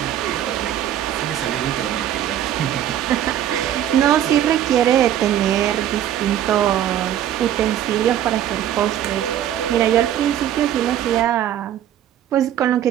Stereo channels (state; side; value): quieter; left; 11.1 dB